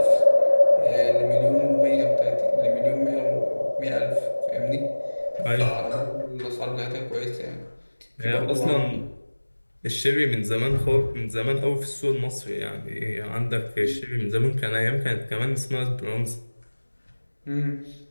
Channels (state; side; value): inverted; both; correlation -1.00